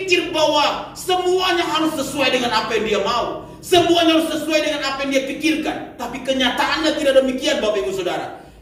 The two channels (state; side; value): identical; both; correlation 1.00